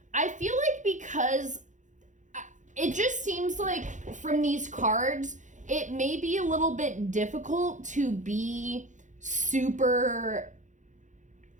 feel like because it just seems like from these cards, it may be a little bit difficult to be super,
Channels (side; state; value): left; late; 0.36 ms